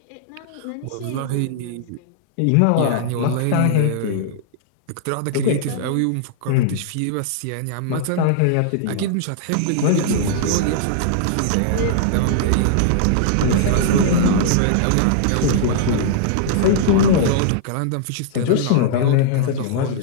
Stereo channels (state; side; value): different; both; correlation -0.01